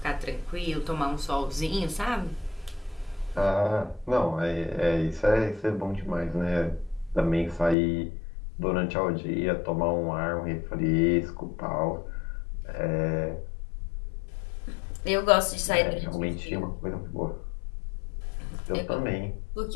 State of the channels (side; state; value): right; drops out; at 7.8 s